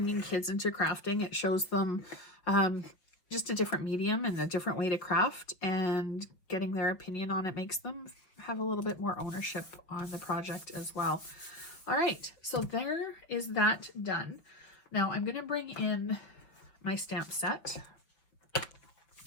kids into crafting. It shows them just a different medium and a different way to craft, and getting their opinion on it makes them have a little bit more ownership on the project as well. All right, so there is that done. Now I'm going to bring in my stamp set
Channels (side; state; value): right; late; 5.8 ms